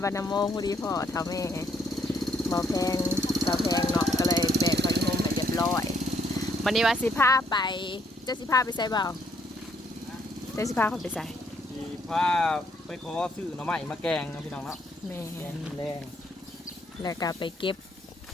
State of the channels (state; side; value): normal; both; correlation 0.70